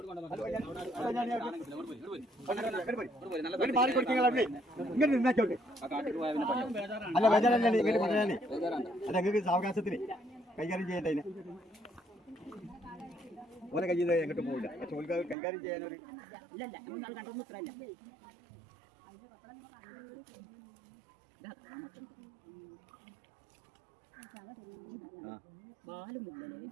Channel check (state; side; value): drops out; left; at 15.4 s